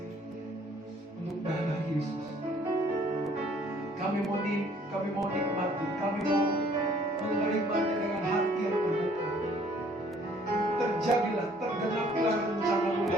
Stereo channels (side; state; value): both; normal; correlation 0.59